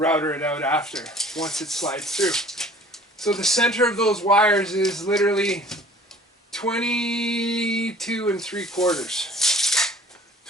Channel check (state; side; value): normal; both; correlation 0.49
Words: it out after, once it slides through. So the center of those wires is literally 22 3/4.